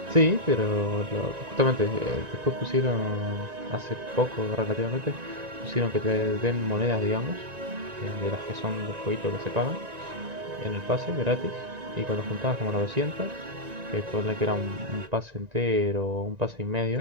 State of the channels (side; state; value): left; late; 1.9 ms